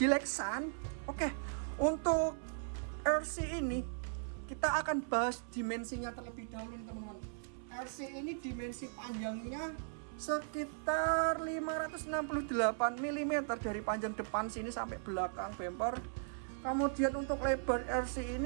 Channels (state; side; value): silent; left; 53 dB below the other